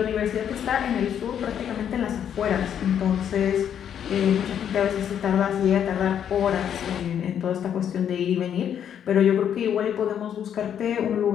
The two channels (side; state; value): right; quieter; 9.0 dB